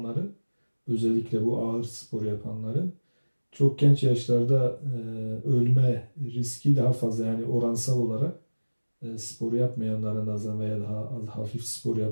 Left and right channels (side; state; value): both; inverted; correlation -1.00